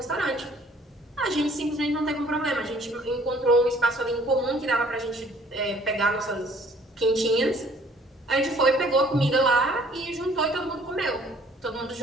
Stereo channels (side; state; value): both; normal; correlation 0.57